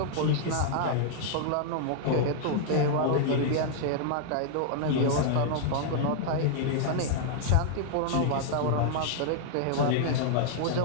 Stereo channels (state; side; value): different; both; correlation -0.01